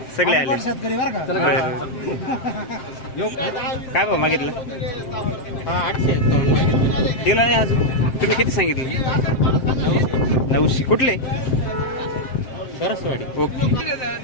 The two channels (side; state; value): right; late; 7.6 ms